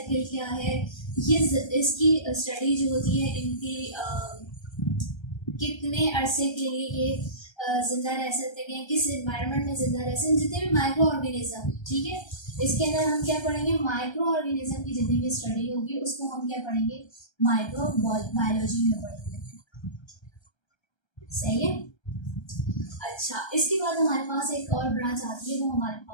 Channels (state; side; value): late; right; 1.3 ms